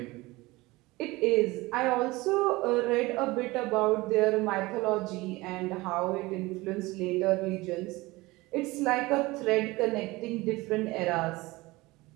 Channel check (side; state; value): left; quieter; 21.2 dB